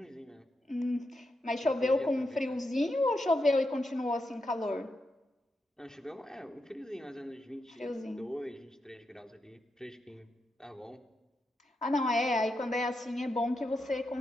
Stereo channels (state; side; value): normal; both; correlation 0.85